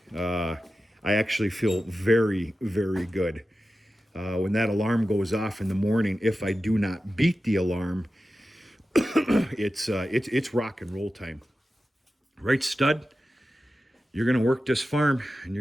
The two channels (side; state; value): both; normal; correlation 0.93